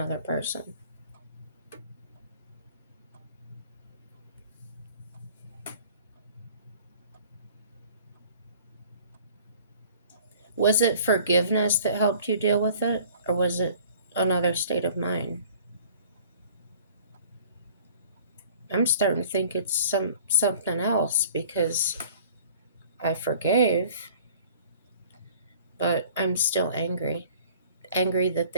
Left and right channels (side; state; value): both; inverted; correlation -0.49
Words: person. Was it forgiveness that helped you deal with it, or was it another state of mind? I'm starting to think it's something else because I forgave, but I'm still angry. Angry that